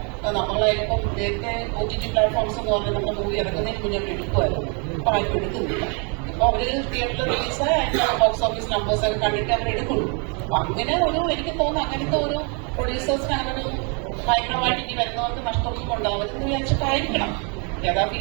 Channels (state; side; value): quieter; left; 36.1 dB